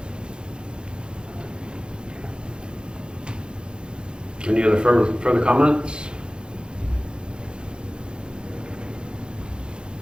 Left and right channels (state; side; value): late; left; 0.050 ms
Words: Any other further comments?